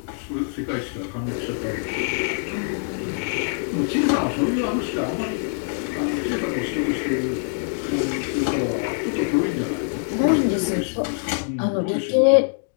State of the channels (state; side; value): silent; right; digital silence